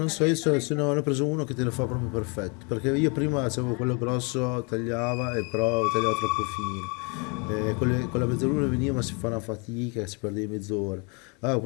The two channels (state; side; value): quieter; right; 33.2 dB